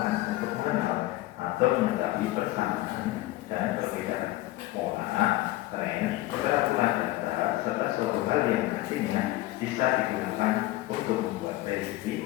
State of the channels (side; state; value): right; quieter; 17.4 dB